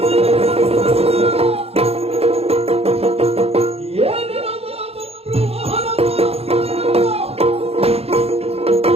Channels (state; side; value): late; left; 0.29 ms